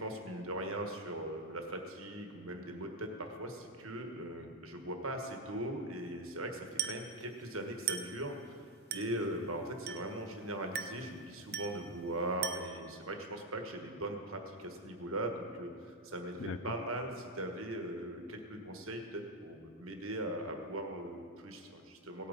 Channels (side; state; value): both; normal; correlation 0.08